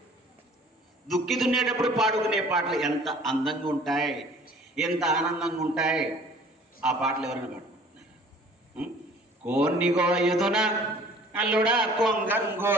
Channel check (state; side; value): normal; both; correlation 0.51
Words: దుక్కి దున్నేటప్పుడు పాడుకునే పాటలు ఎంత అందంగా ఉంటాయి, ఎంత ఆనందంగా ఉంటాయి. ఆ పాటలు ఎవరైనా పాడుకుంటున్నారు? కోన్ని గోయుదునా అల్లుడా